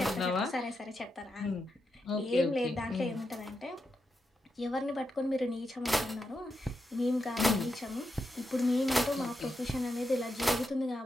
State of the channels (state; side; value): normal; both; correlation 0.86